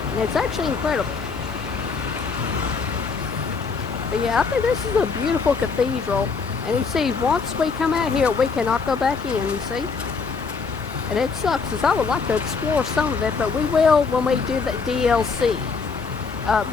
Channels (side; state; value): right; quieter; 5.0 dB